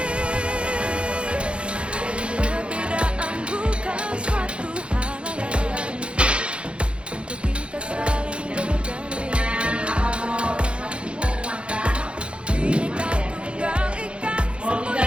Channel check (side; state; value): left; late; 0.058 ms